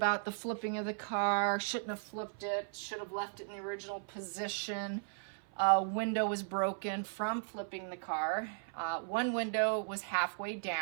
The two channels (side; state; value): left; silent; 53 dB below the other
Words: the flipping of the car. Shouldn't have flipped it. Should have left it in the original position. Window was broken from flipping the car. One window was halfway